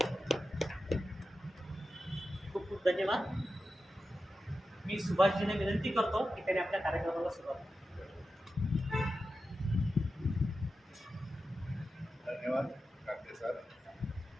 खूप खूप धन्यवाद. मी सुभाषजीने विनंती करतो की त्यांनी आपल्या कार्यक्रमाला सुरुवात करावी. धन्यवाद काकडे सर.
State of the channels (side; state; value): both; normal; correlation 0.91